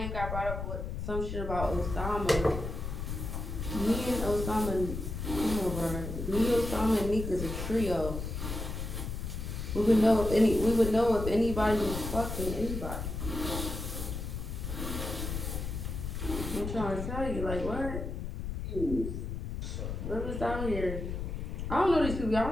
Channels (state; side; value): noise; left; rumble, 5 dB below the sound